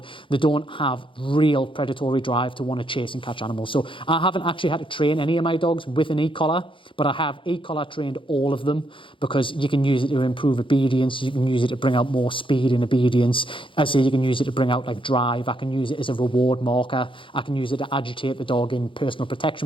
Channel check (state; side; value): late; right; 0.25 ms